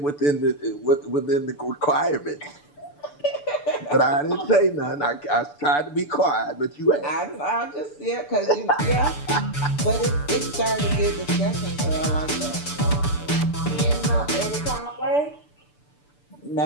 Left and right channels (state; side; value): late; right; 6.9 ms